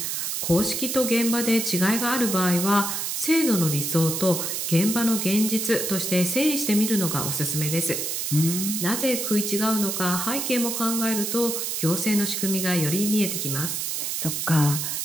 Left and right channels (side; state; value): right; noise; hiss, 2 dB below the sound